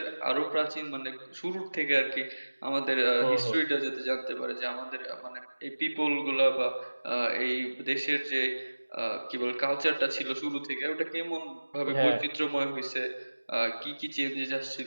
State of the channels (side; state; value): both; inverted; correlation -1.00